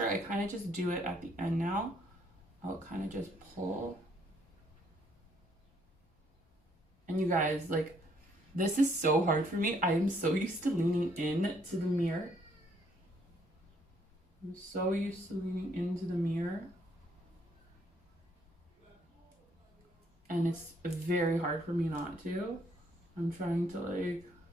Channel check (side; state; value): both; normal; correlation 0.68